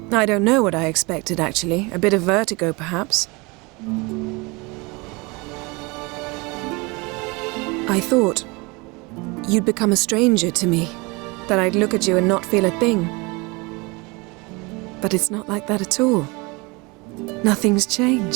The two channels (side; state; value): left; quieter; 26.5 dB